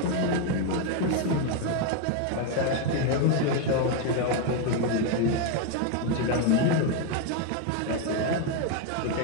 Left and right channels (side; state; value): both; different; correlation 0.01